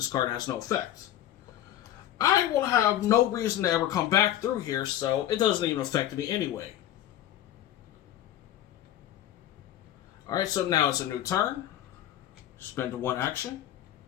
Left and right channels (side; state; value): right; quieter; 12.3 dB